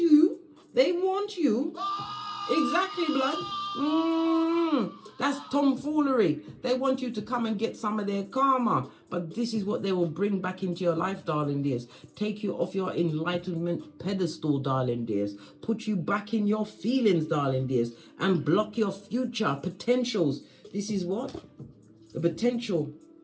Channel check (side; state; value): both; identical; correlation 1.00